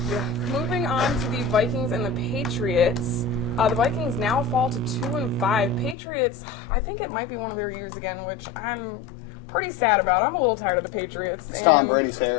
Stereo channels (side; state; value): right; drops out; at 6.0 s